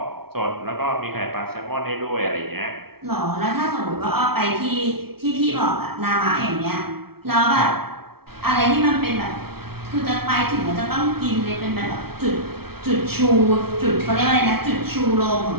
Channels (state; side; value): late; left; 0.95 ms